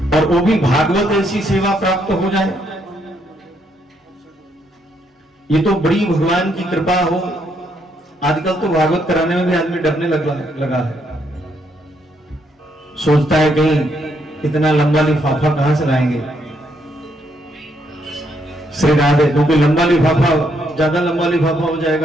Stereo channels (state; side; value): normal; both; correlation 0.74